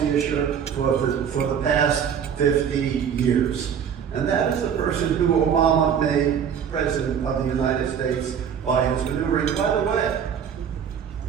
issue for the past 50 years. And that is the person who Obama made president of the United States by his maneuvering. By the way,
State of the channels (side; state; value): left; quieter; 7.9 dB